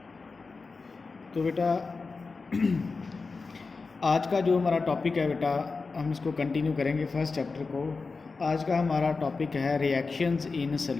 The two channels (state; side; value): quieter; right; 4.2 dB